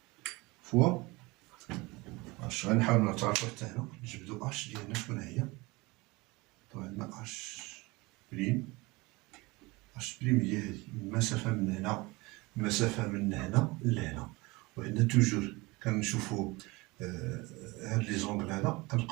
fois اش. غنحاولوا نتعرفوا حتى هنا نجبدوا اش ديالنا شكون هي. طبعا عندنا اش بريم. اش بريم هي هذه المسافه من هنا، المسافه من هنا لهنا. وعندنا توجور كنشوفوا هاد لي زونغل هذا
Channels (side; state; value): left; quieter; 23.5 dB